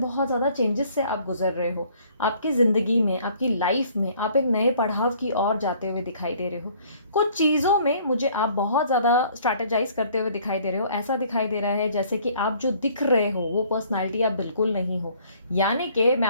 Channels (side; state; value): both; inverted; correlation -0.58